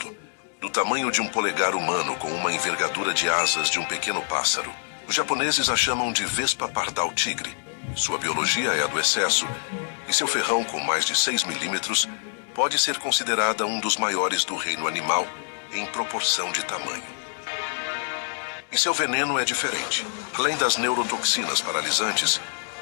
do tamanho de um polegar humano com uma envergadura de asas de um pequeno pássaro. Os japoneses a chamam de vespa pardal tigre. Sua biologia é a do excesso, e seu ferrão com mais de 6 milímetros pode ser considerada um dos maiores do reino animal em proporção de tamanho. E seu veneno é diferente. Além das neurotoxinas paralisantes,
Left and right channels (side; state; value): right; silent; digital silence